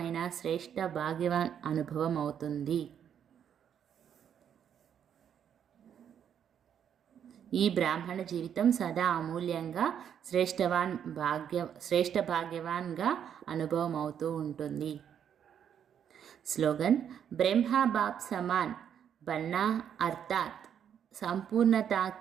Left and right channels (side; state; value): left; quieter; 8.7 dB